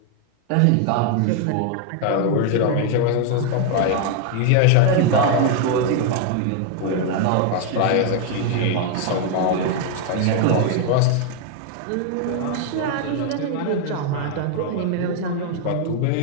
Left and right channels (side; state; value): both; different; correlation 0.00